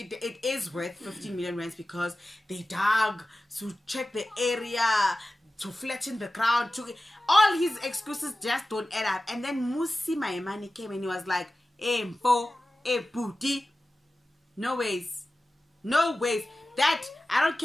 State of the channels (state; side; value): normal; both; correlation 0.95